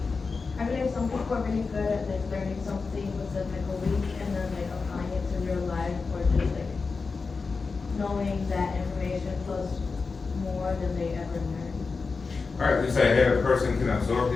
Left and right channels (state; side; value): quieter; right; 4.5 dB